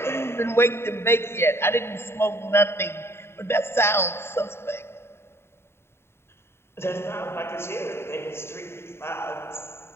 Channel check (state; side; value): late; right; 0.12 ms